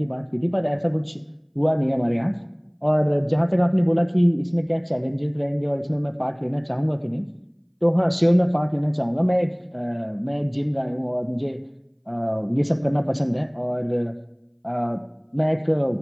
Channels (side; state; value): both; identical; correlation 1.00